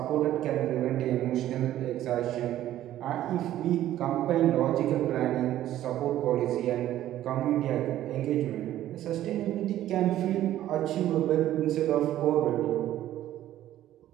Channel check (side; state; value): left; quieter; 13.0 dB